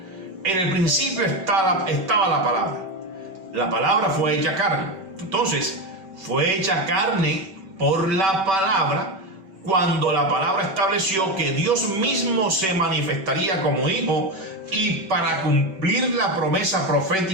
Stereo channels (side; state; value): left; late; 5.2 ms